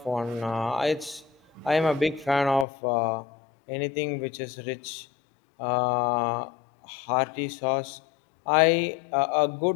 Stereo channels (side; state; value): right; drops out; at 2.7 s